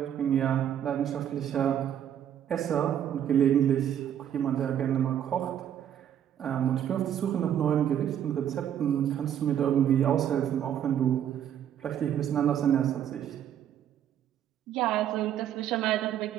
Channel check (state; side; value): quieter; left; 10.0 dB